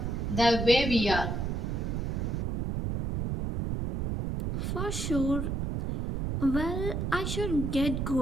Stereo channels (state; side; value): noise; right; rumble, 2 dB below the sound